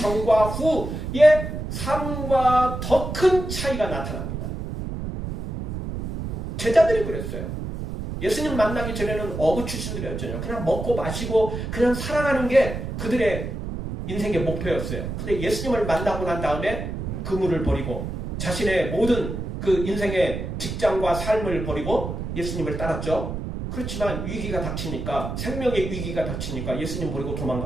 후의 삶과 더 큰 차이가 나타납니다. 제자들이 그랬어요. 예수님 만나기 전에는 어부 출신들이었잖아요. 그냥 먹고 마시고 그냥 살아가는 게 그들의 인생의 목표였어요. 근데 예수님을 만나고 난 다음에 그물을 버리고 자신의 모든 그 인생의 직장과 삶을 버리고 예수님을 따랐죠. 그렇지만 위기가 닥치니까, 생명의 위기가 닥치니까 예수님 버리고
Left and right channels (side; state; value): right; noise; rumble, 5 dB below the sound